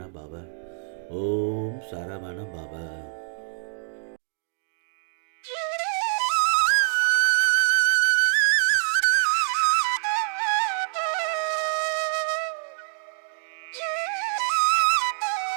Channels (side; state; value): left; silent; digital silence